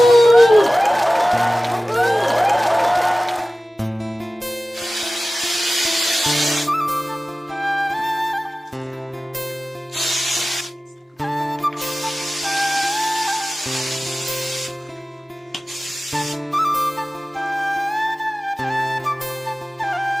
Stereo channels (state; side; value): normal; both; correlation 0.96